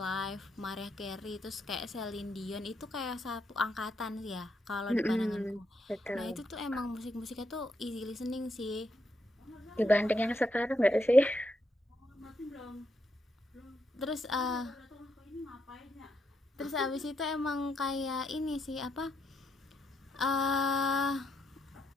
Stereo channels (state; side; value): normal; both; correlation 0.80